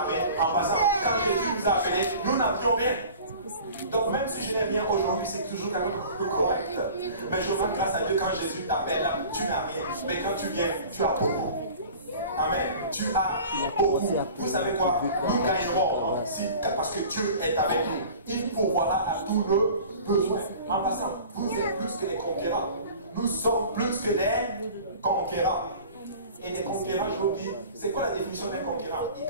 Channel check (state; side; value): inverted; both; correlation -0.42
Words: en passant, quand Jésus nous a appelés, nous n'avions rien. Donc même si je n'ai rien aujourd'hui, c'est toujours quand même correct. Mais je rends grâce à Dieu quand Jésus t'appelle, tu n'as rien. Mais quand tu viens, tu as beaucoup. Amen. Tu as beaucoup. Vous savez quoi? Nous gagnerons parce que Dieu est avec nous. Il pourvoira à tous nos besoins. En passant, vous êtes plus que des conquérants. Nous sommes plus que des conquérants. Et des conquérants, je vous dis, c'est quoi la définition d'un conquérant? Il